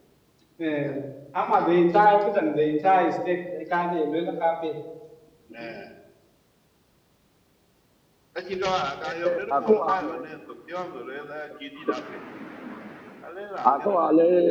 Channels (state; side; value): identical; both; correlation 1.00